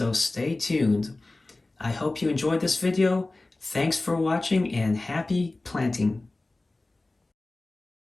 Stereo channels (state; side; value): quieter; right; 3.0 dB